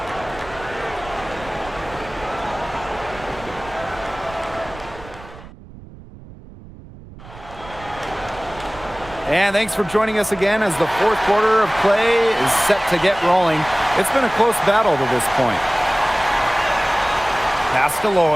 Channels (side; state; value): right; noise; rumble, 18 dB below the sound